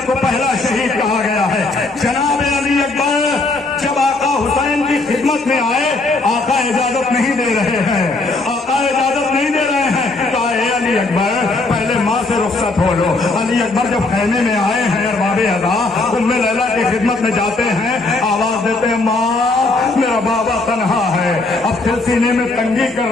کو پہلا شہید کہا گیا ہے۔ جناب علی اکبر جب آقا حسین کی خدمت میں آئے، آقا اجازت نہیں دے رہے ہیں، آقا اجازت نہیں دے رہے ہیں، کہا اے علی اکبر پہلے ماں سے رخصت ہو لو۔ علی اکبر جب خیمے میں آئے ہیں ارباب اعضاء ام لیلا کی خدمت میں جاتے ہیں، آواز دیتے ہیں ماں میرا میرا بابا تنہا ہے، اب دل سینے میں تنگی کر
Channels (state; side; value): quieter; right; 3.3 dB